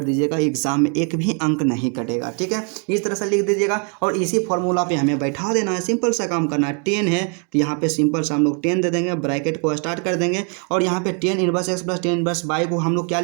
दीजिएगा। एग्जाम में एक भी अंक नहीं कटेगा। ठीक है, इस तरह से लिख दीजिएगा और इसी फॉर्मूला पे हमें बैठा देना है। सिंपल सा काम करना है। 10 है तो यहाँ पे सिंपल सा हम लोग 10 दे देंगे, ब्रैकेट को स्टार्ट कर देंगे और यहाँ पे tan inverse x plus tan inverse y को हम लोग क्या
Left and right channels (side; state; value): left; quieter; 39.2 dB